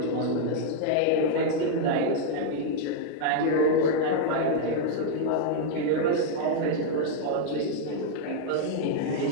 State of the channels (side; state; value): both; different; correlation -0.01